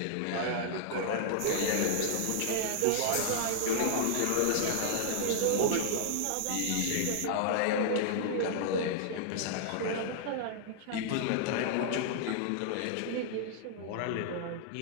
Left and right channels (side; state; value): both; different; correlation -0.01